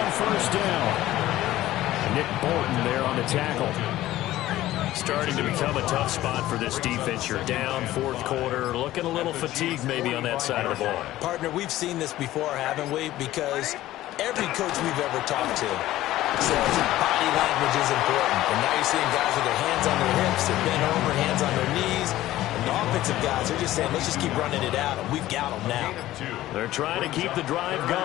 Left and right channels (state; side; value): quieter; right; 15.1 dB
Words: 1st down. Nick Bolton there on the tackle. Starting to become a tough spot for this defense. You're down 4th quarter, looking a little fatigued maybe on that side of the ball. Partner, we've seen this before, haven't we? Because every coach we've ever talked to says body language is important. And now you're seeing guys with their hands on their hips, they're bent over, hands on their knees. And the offensive guys are just saying, let's just keep running it out, and we've got them now. They're trying to keep the drive